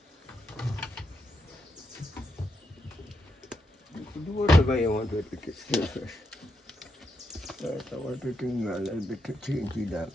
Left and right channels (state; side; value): normal; both; correlation 0.82